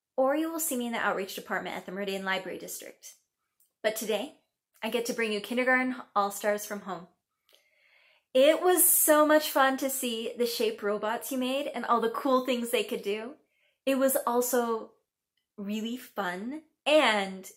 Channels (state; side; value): identical; both; correlation 1.00